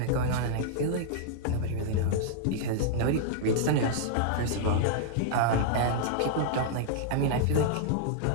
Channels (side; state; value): both; different; correlation -0.01